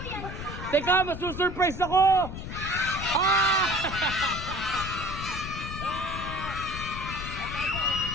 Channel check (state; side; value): noise; left; rumble, 8 dB below the sound